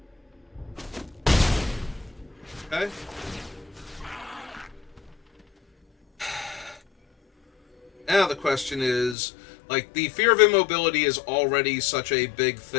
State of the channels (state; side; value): drops out; right; at 9.2 s